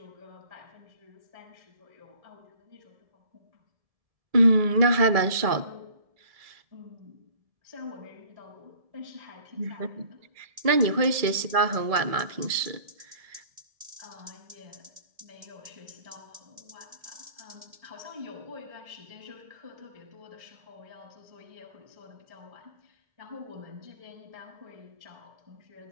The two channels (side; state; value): left; late; 1.7 ms